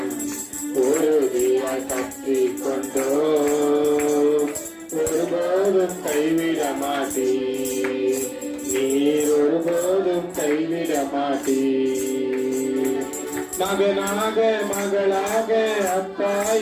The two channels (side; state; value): both; identical; correlation 1.00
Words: உறுதியாய் பற்றி கொண்டோம், ஒருபோதும் கைவிட மாட்டீர், நீர் ஒருபோதும் கைவிட மாட்டீர். மகனாக மகளாக அப்பா